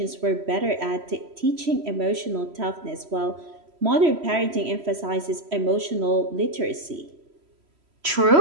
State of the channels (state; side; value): late; left; 3.1 ms